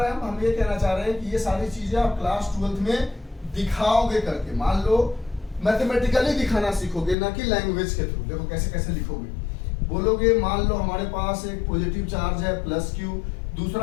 हैं हम ये कहना चाह रहे हैं कि ये सारी चीजें आप क्लास 12th में दिखाओगे करके। मान लो मैथमेटिकली दिखाना सीखोगे, ना कि लैंग्वेज के थ्रू। देखो कैसे कैसे लिखोगे, बोलोगे मान लो हमारे पास एक पॉजिटिव चार्ज है +q,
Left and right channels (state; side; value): drops out; right; at 7.2 s